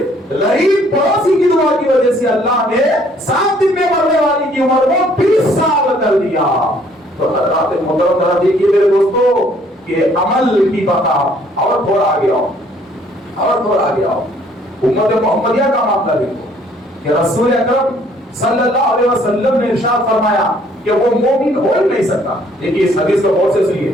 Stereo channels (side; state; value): both; normal; correlation 0.62